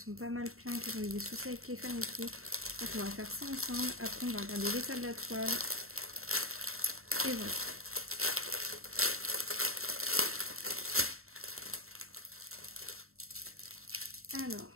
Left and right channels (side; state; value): left; late; 0.62 ms